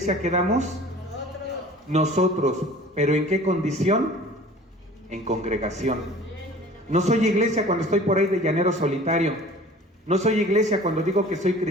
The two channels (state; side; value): normal; both; correlation 0.45